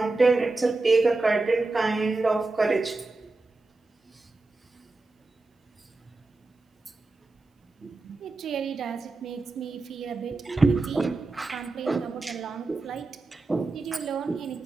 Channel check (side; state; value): left; quieter; 3.4 dB